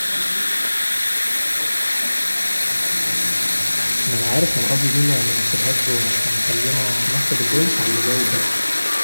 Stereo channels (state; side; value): inverted; both; correlation -1.00